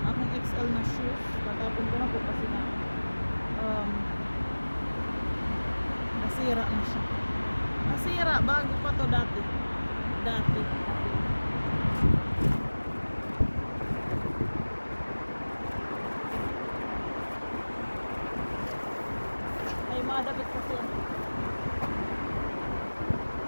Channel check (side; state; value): both; inverted; correlation -1.00